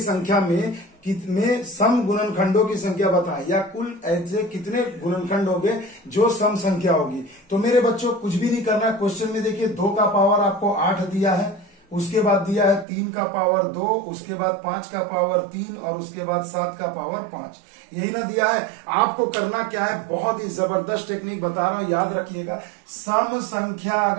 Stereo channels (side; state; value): left; drops out; at 12.9 s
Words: संख्या में सम गुणनखंडों की संख्या बताएं, या कुल ऐसे कितने गुणनखंड होंगे जो सम संख्या होगी। तो मेरे बच्चों कुछ भी नहीं करना है। क्वेश्चन में देखिए 2 का पावर आपको 8 दिया है, उसके बाद दिया है 3 का पावर 2, उसके बाद 5 का पावर 3 और उसके बाद 7 का पावर 5। यही ना दिया है। आपको करना क्या है, बहुत ही जबरदस्त टेक्निक बता रहा हूं, याद रखिएगा। सम संख्या